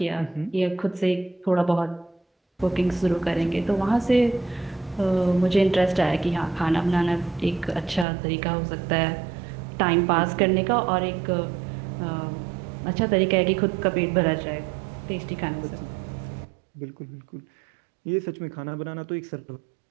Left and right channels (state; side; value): drops out; left; at 8.1 s